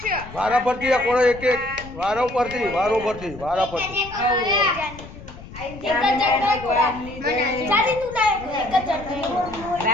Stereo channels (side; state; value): left; noise; rumble, 15 dB below the sound